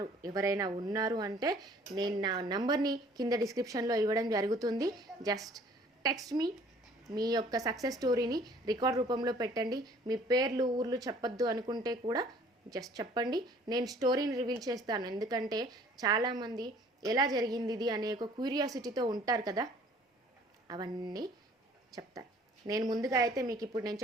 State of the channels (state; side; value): normal; both; correlation 0.55